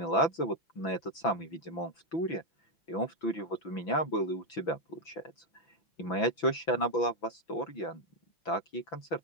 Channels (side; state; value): right; late; 6.0 ms